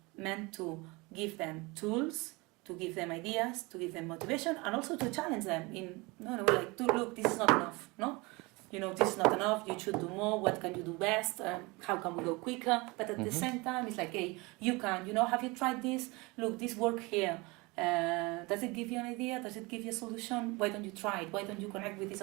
meant to give them tools, to give them ideas, to give them motivation, and also to challenge them in, look, this is not enough, no? this is not enough, you should do more, what can you do best, how can we go quicker, but at the same time it's like, hey, you can, have you tried this, look, this work here, does it give you an idea, does it give you a solution, why don't you try it, why don't you connect with this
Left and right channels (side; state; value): left; quieter; 25.1 dB